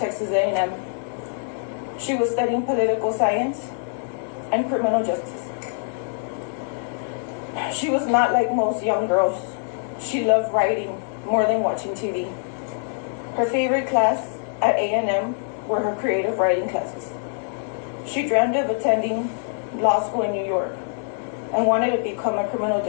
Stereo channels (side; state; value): right; silent; digital silence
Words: A&M. She was studying political science and criminal justice. She was not like most young girls. She loved writing more than watching TV. Her favorite class at A&M were her creative writing classes. She dreamed of attending law school in New York and wanted to become a criminal